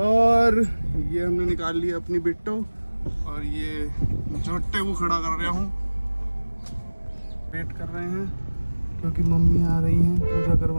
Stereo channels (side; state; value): both; inverted; correlation -1.00